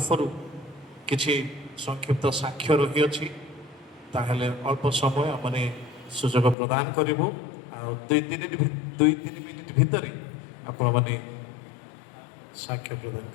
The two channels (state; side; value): drops out; right; at 6.6 s